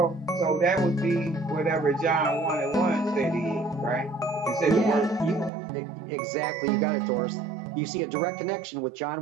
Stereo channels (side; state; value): left; drops out; at 5.5 s